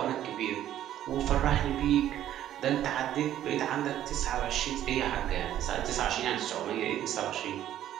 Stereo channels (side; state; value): left; quieter; 11.8 dB